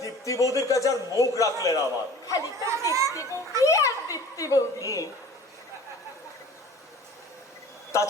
দীপ্তি বৌদির কাছে আর মুখ রাখলে না আমার। খালি তো দীপ্তি বৌদি আর দীপ্তি বৌদি।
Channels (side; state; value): both; normal; correlation 0.44